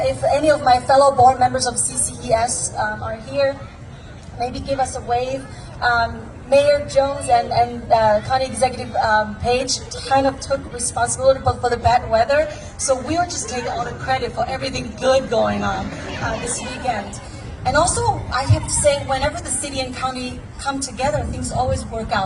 if any of my fellow board members of CCES are here, maybe give us a wave. Mayor Jones and County Executive Page kind of took responsibility for the bad weather, so we were just taking all the credit for everything good going on this weekend. And also, I have to say, whenever the city and county come together, things always work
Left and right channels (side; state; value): both; identical; correlation 1.00